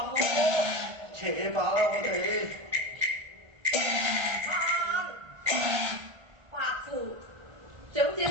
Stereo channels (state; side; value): late; left; 1.3 ms